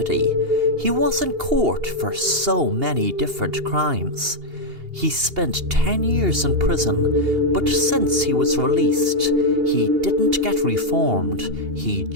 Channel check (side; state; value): left; late; 2.8 ms